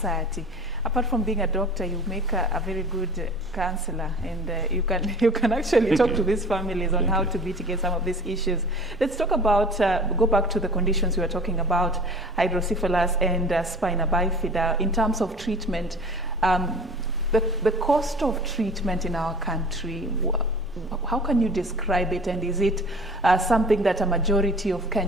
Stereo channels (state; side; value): noise; right; rumble, 23 dB below the sound